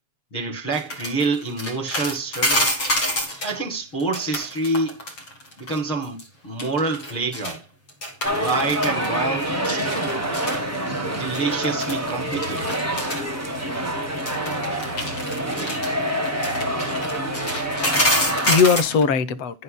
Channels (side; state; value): right; late; 7.2 ms